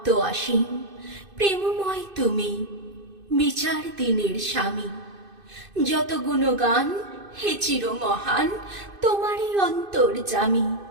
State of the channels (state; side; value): late; left; 2.5 ms